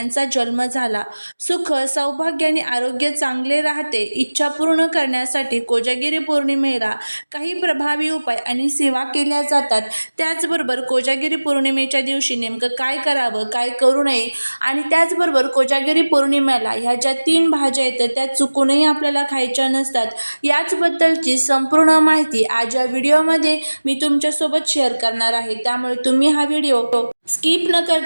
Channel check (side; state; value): both; inverted; correlation -1.00